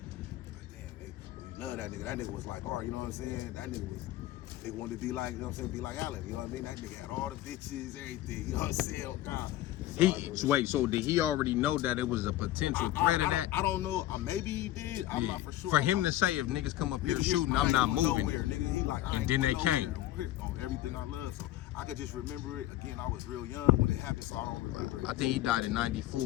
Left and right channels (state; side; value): quieter; right; 14.6 dB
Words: Like, damn, nigga, we love that nigga. That nigga was like, all right, you know what I'm saying? That nigga wanted to be like, you know what I'm saying, be like Allen, you know what I mean? That nigga had all the bitches, everything, you know what I'm saying, oh God. So did he already know that it was a potential threat of that? I don't know, maybe he did, I'm not for sure. For him to say, if niggas come up here shooting, I'm not moving. Nowhere, nigga. He like, and then they came. On everything I love, so I could just remember it. Again, I was real young when it happened, so I don't remember it. I think he died in